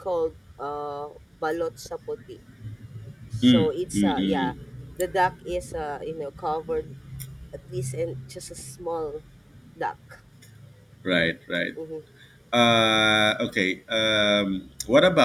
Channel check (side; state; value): both; normal; correlation 0.97